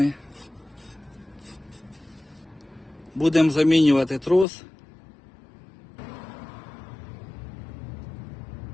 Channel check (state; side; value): drops out; right; at 4.5 s